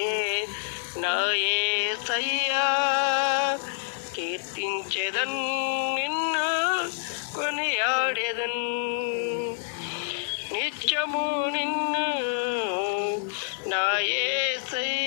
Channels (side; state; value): right; silent; digital silence